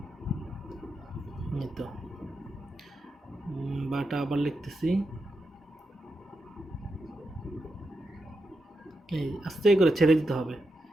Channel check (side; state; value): both; normal; correlation 0.86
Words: এই তো বাটা আবার লিখতেছি, এই আস্তে করে ছেড়ে দিতে হবে,